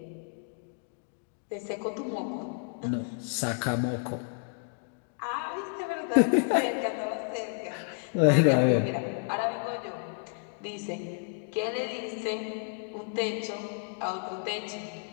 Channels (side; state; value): right; silent; 57 dB below the other